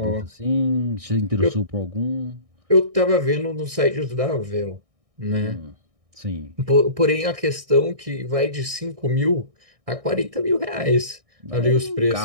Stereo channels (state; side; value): late; left; 1.6 ms